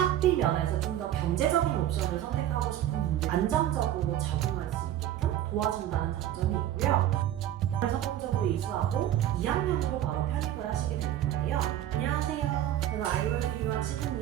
개인 면에서 좀 더 경제적인 옵션을 선택하고 싶은 분들 안정적으로 적응할 수 있게끔 도와준다는 장점이 있고요. 성공적으로 이수하고 2학년으로 바로 편입을 하시게 되는 건데요. 안녕하세요. 저는 아이월드 유학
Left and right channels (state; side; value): quieter; left; 12.0 dB